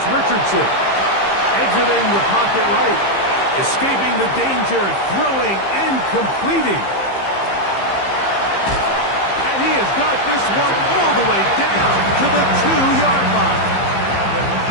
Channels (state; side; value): late; right; 15 ms